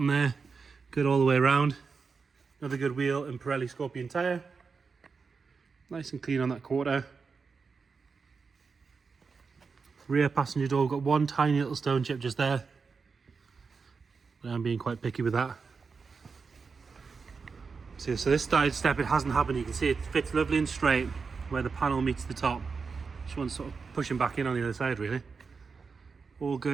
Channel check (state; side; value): quieter; left; 5.1 dB